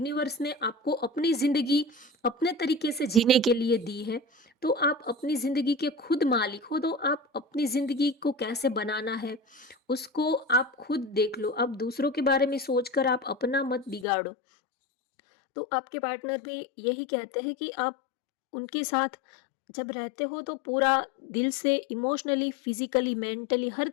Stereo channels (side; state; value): right; drops out; at 14.1 s